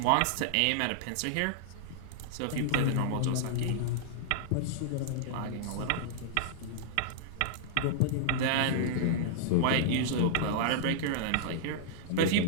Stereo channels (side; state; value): both; different; correlation -0.01